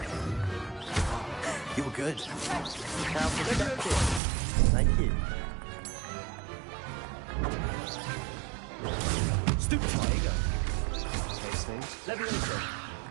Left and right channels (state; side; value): drops out; left; at 4.2 s